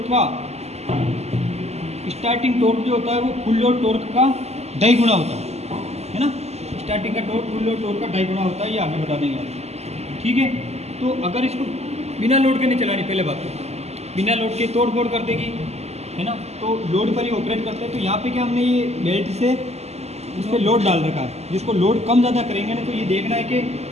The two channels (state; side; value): late; left; 0.31 ms